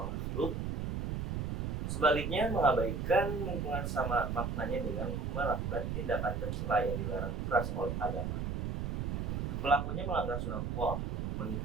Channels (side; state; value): right; noise; rumble, 1 dB below the sound